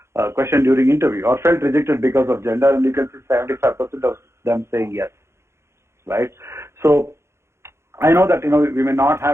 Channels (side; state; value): left; late; 0.13 ms